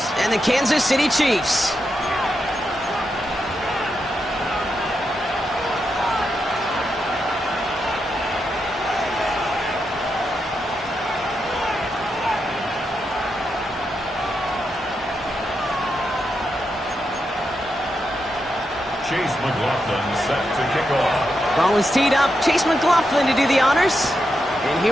and the Kansas City Chiefs. Chase McLaughlin set to kick off. Ball is teed up. Chase McLaughlin to do the honors. And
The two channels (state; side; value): normal; both; correlation 0.85